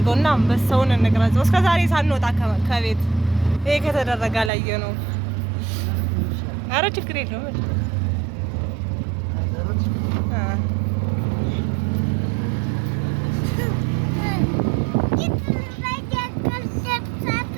አንበሳውን እንቅረጸው። እስከ ዛሬ ሳንወጣ ከቤት ይሄ ከተደረገ አላየ ነው። ኧረ ችግር የለውም።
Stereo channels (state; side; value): drops out; left; at 4.5 s